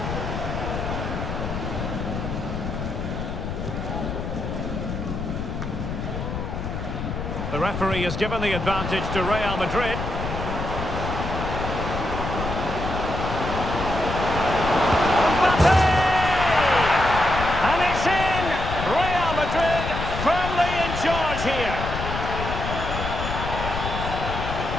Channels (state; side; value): noise; left; rumble, 5 dB below the sound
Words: The referee has given the advantage to Real Madrid. Mbappe! And it's in! Real Madrid firmly in charge here.